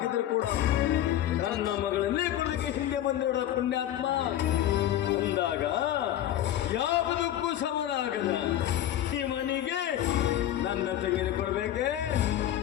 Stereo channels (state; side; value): quieter; right; 12.3 dB